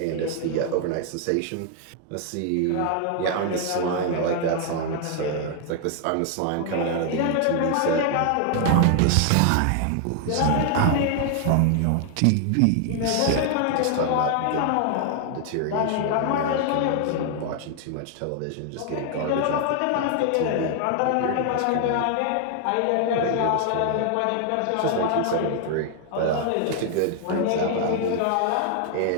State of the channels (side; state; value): both; different; correlation 0.00